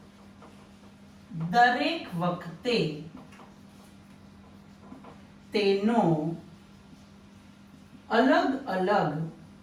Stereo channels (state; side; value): identical; both; correlation 1.00